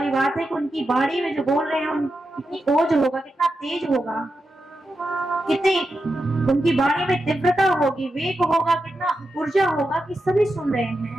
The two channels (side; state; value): both; normal; correlation 0.88